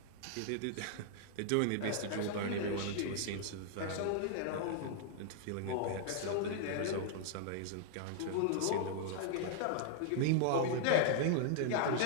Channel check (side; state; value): both; different; correlation -0.01